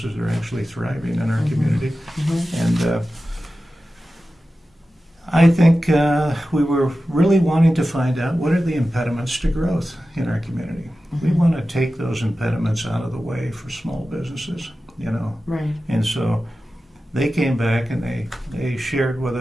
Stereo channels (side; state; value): both; normal; correlation 0.94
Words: are actually thriving in our community. And I think we were really wanting to find out, what are the impediments to growth in our community? We want to take those impediments out of the way for small businesses, Right. And so they came back and they shared with